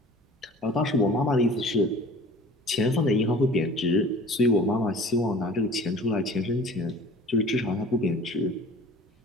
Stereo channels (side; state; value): both; normal; correlation 0.45